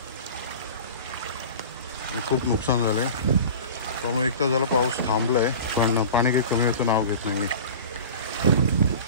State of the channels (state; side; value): inverted; both; correlation -0.37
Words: खूप नुकसान झालं आहे। त्यामुळे एक तास झाला पाऊस थांबला आहे, पण पाणी काही कमी होतं नाव घेत नाही आहे।